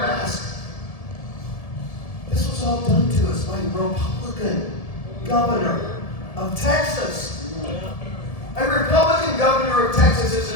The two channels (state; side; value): late; right; 1.7 ms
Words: mask. This was all done to us by a Republican governor of Texas. A Republican governor of Texas has